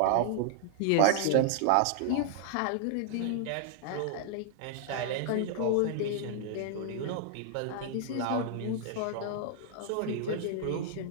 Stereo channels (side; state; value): both; different; correlation -0.01